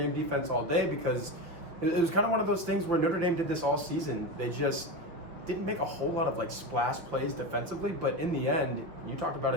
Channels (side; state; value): left; late; 5.8 ms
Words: defense all day because it was kind of one of those things where Notre Dame did this all season. They just didn't make a whole lot of like splash plays defensively, but in the end, you talked about